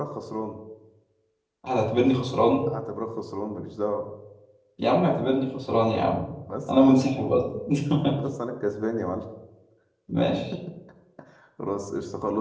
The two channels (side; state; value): both; identical; correlation 1.00